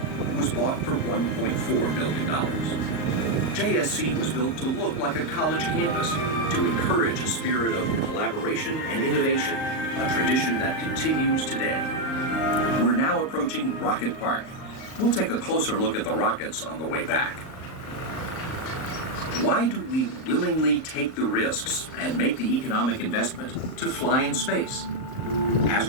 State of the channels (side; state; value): right; late; 38 ms